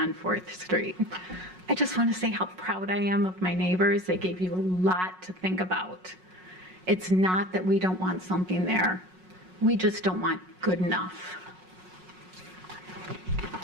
4th Street. I just want to say how proud I am of my neighbors. They gave you a lot to think about. It's not that we don't want something there. We just don't want good enough.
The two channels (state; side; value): late; left; 5.4 ms